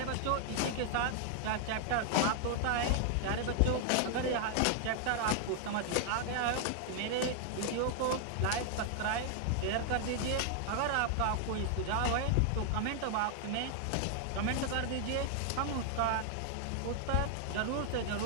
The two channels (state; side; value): different; both; correlation 0.00